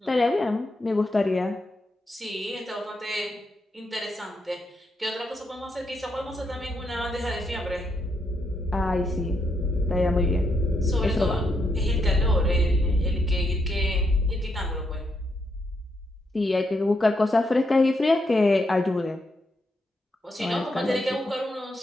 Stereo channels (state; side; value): normal; both; correlation 0.80